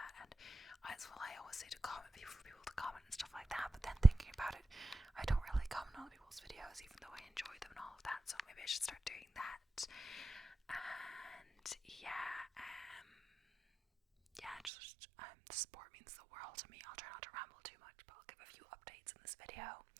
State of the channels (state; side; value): drops out; left; at 14.7 s